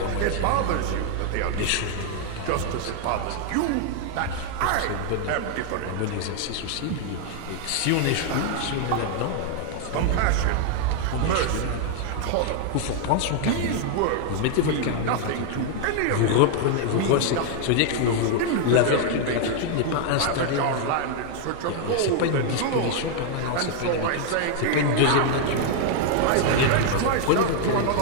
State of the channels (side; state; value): both; different; correlation 0.00